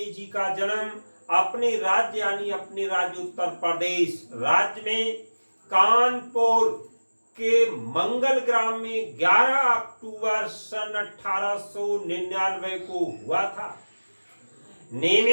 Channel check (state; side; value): inverted; both; correlation -1.00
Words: जी का जन्म अपने राज्य यानी अपने राज्य उत्तर प्रदेश राज्य में कानपुर के मंगल ग्राम में 11 अक्टूबर सन 1899 को हुआ था।